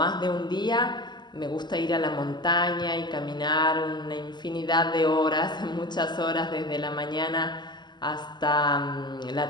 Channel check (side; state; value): right; late; 0.21 ms